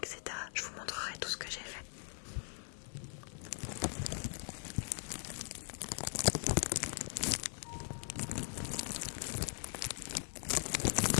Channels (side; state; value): right; silent; 51 dB below the other